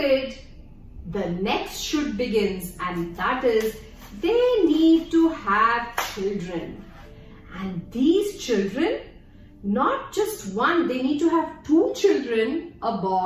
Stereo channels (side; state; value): both; identical; correlation 1.00